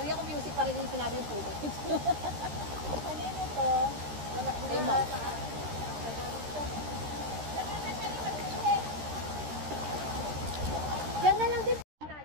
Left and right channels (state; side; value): late; left; 13 ms